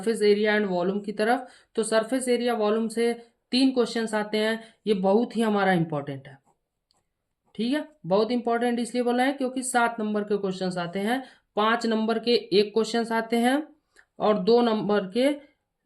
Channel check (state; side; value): identical; both; correlation 1.00